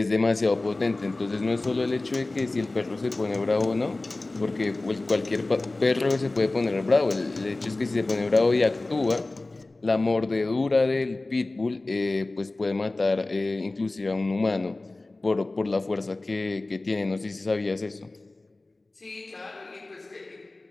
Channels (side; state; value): right; quieter; 3.0 dB